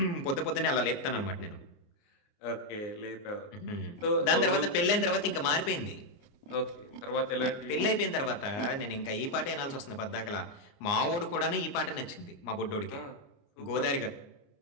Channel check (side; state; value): right; late; 29 ms